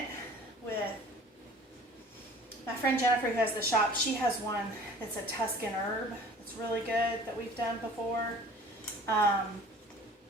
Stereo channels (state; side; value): normal; both; correlation 0.47